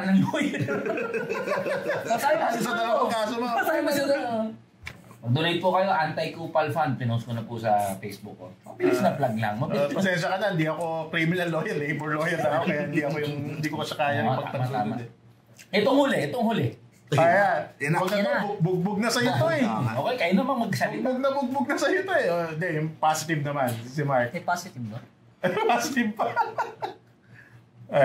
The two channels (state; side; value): identical; both; correlation 1.00